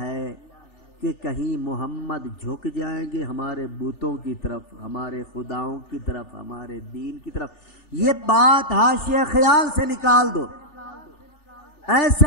ہے کہ کہیں محمد جھک جائیں گے ہمارے بتوں کی طرف، ہمارے خداؤں کی طرف، ہمارے دین کی طرف، یہ بات حاشیہ خیال سے نکال دو۔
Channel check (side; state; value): right; late; 3.4 ms